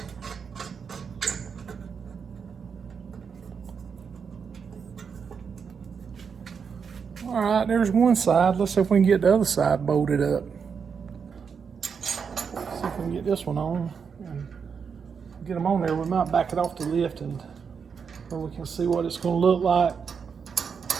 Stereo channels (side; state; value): left; quieter; 6.3 dB